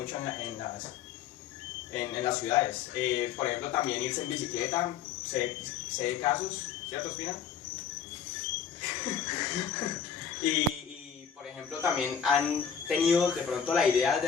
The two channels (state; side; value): quieter; right; 7.6 dB